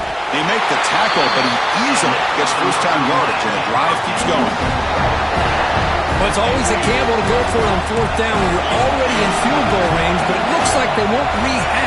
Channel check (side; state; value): both; identical; correlation 1.00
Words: They make the tackle, but he easily gets first-down yardage, and the drive keeps going. Well, it's always a gamble to go for it on fourth down when you're already in field goal range, but it looks like they won't